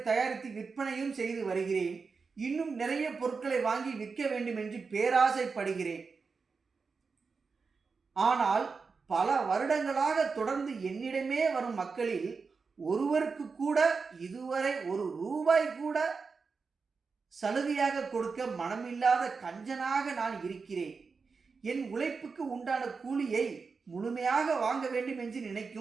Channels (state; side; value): quieter; left; 4.9 dB